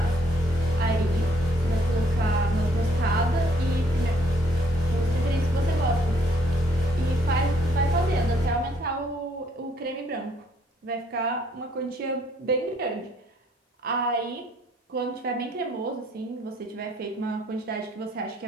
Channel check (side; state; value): both; normal; correlation 0.66